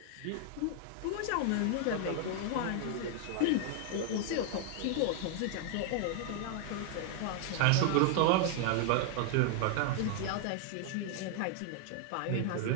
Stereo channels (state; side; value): different; both; correlation 0.00